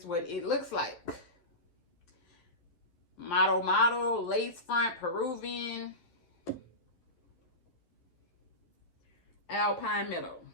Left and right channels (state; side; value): late; right; 11 ms